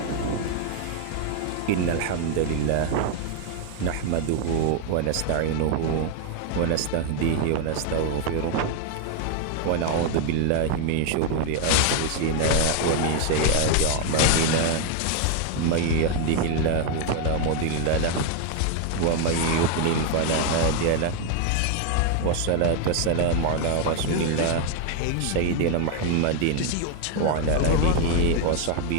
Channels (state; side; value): different; both; correlation 0.00